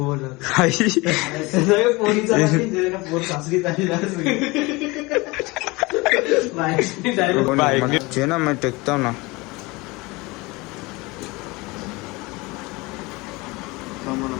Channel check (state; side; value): quieter; right; 23.7 dB